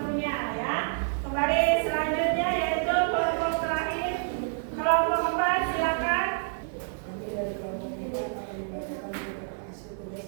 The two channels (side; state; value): left; silent; digital silence